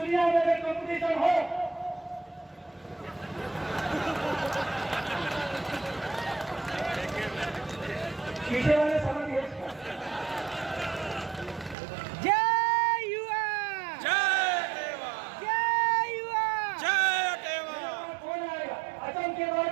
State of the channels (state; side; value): drops out; left; at 11.8 s